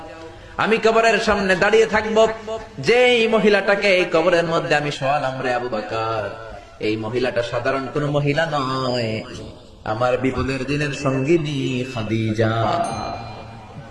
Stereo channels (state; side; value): identical; both; correlation 1.00